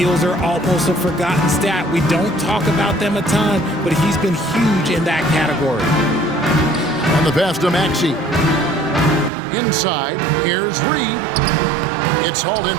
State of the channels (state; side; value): drops out; left; at 9.3 s